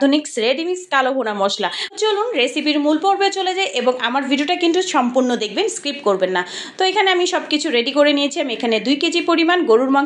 রেডিমিক্স কালো ভুনা মশলা। চলুন রেসিপির মূল পর্বে চলে যাই এবং আমার ভিডিওটা কিন্তু সম্পূর্ণ দেখবেন, স্কিপ করবেন না। তো এখানে আমি সব কিছু রেডি করে নিয়েছি। আমি এখানে 2 কেজি পরিমাণ গরুর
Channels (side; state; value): both; identical; correlation 1.00